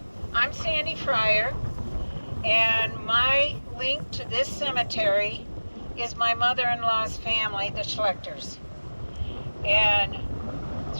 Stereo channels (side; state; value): both; inverted; correlation -1.00